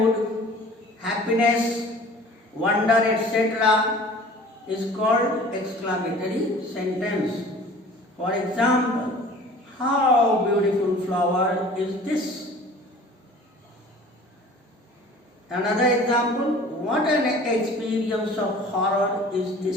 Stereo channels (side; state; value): both; normal; correlation 0.46